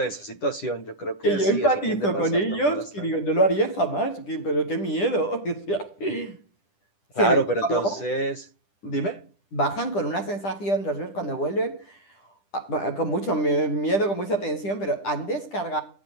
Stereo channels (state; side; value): late; right; 10 ms